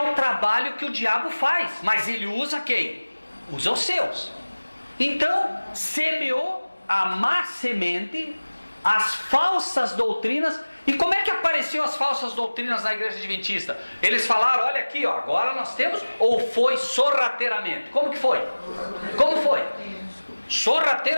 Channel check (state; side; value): inverted; both; correlation -1.00